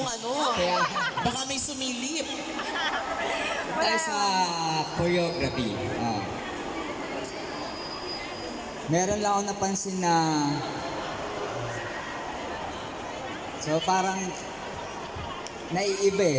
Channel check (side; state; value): both; identical; correlation 1.00